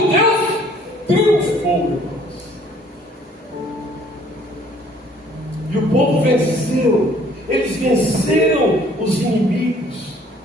Deus triunfou, irmãos. E o povo venceu. Eles venceram os inimigos.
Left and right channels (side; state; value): both; normal; correlation 0.58